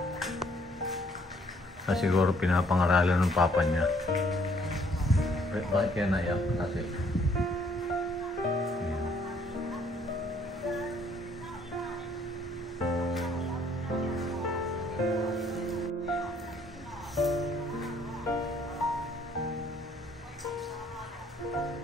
Siguro pinapangaralan ng papa niya. Bakit kaya naiyak? Kasi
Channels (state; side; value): normal; both; correlation 0.64